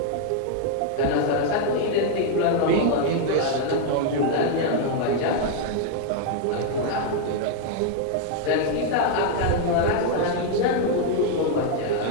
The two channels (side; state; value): both; different; correlation 0.00